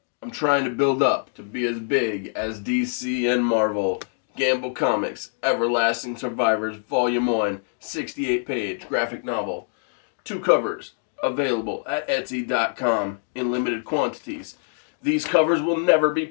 I'm trying to build up to be as big as DC and Marvel. Gamble Comics, Everlasting Survivors, Volume 1, 68-page graphic novel. 2 covers, available at Etsy.com in limited quantities. These covers will never be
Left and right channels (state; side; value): silent; right; digital silence